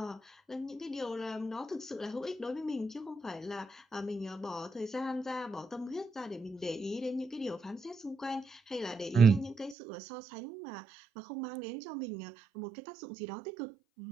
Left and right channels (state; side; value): drops out; left; at 9.8 s